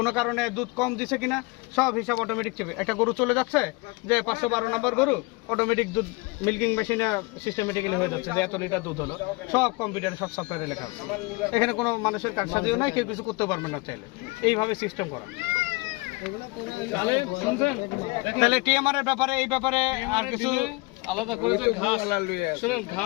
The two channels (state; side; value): quieter; right; 25.6 dB